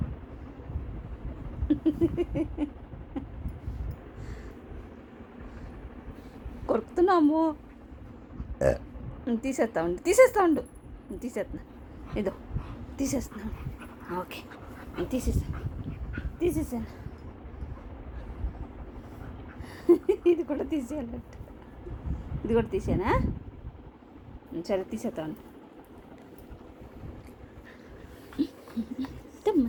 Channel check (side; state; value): both; identical; correlation 1.00